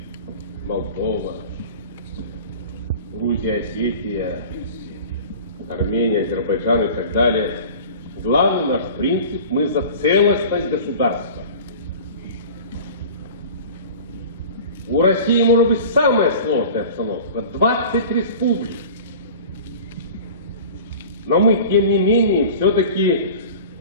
Молдова, Грузия, Осетия, Армения, Азербайджан и так далее. Главный наш принцип – мы за целостность государства. У России может быть самая сложная обстановка – 20 республик. Но мы, тем не менее, все-таки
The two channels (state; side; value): inverted; both; correlation -0.39